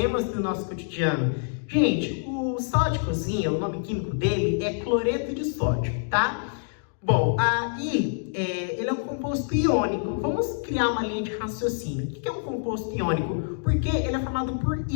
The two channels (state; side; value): silent; right; digital silence